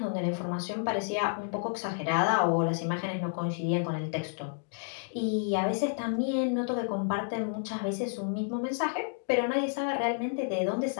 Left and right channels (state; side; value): silent; right; digital silence